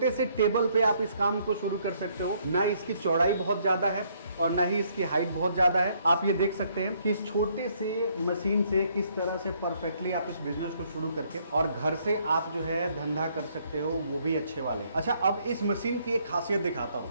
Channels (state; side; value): inverted; both; correlation -0.68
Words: से टेबल पे आप इस काम को शुरू कर सकते हो। ना इसकी चौड़ाई बहुत ज्यादा है और ना ही इसकी हाइट बहुत ज्यादा है। आप ये देख सकते हैं कि इस छोटे से मशीन से किस तरह से परफेक्टली आप इस बिजनेस को शुरू करके और घर से आप जो है धंधा कर सकते हो, वो भी अच्छे वाले। अच्छा, अब इस मशीन की एक खासियत दिखाता हूँ।